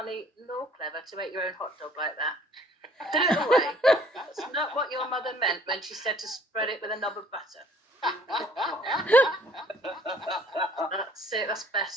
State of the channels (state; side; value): normal; both; correlation 0.57